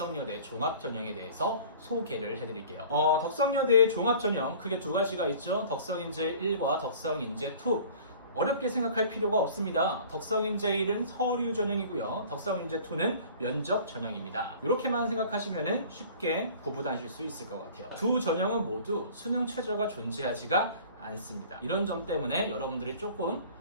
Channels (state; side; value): inverted; both; correlation -0.46